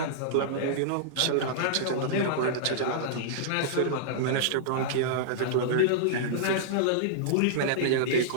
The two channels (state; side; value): different; both; correlation -0.02